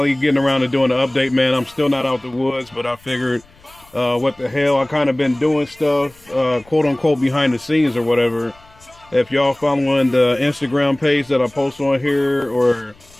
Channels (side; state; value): left; noise; rumble, 28 dB below the sound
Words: getting around to doing the update, man. I'm still not out the woods, but I figured, what the hell? I kind of been doing stuff, quote unquote, behind the scenes or whatever. If y'all following the Instagram page that I post on here, or